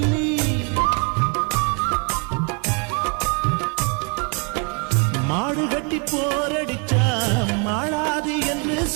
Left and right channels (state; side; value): quieter; left; 35.1 dB